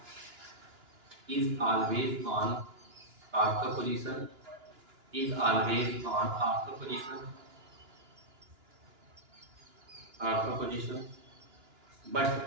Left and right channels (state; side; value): late; left; 2.9 ms